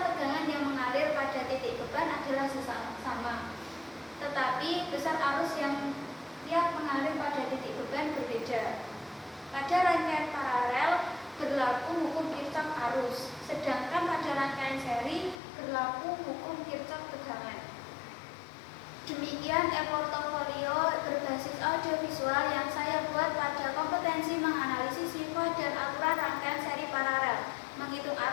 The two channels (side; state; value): right; drops out; at 15.4 s